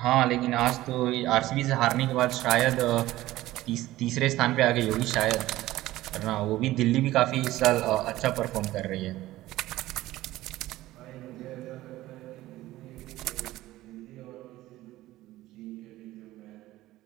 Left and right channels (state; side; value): quieter; left; 16.3 dB